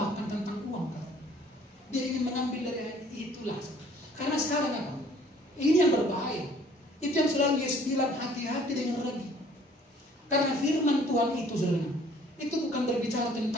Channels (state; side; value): normal; both; correlation 0.57